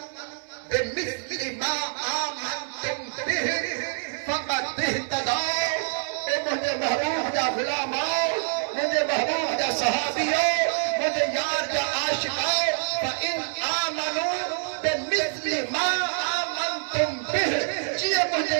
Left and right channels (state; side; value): silent; left; 61 dB below the other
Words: बिमिस्लि मा आमनतुम बिहि फक़द इहतदौ। ए मुंहिंजे महबूब जा गुलामो मुंहिंजे महबूब जा सहाबियो मुंहिंजे यार जा आशिको फइन आमनू बिमिस्लि मा आमनतुम बिहि जीअं मुंहिंजे